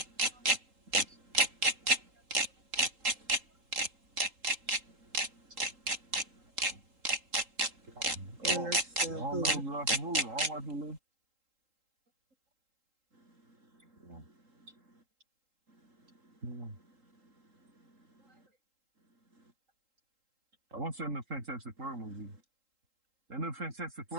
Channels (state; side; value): late; left; 3.8 ms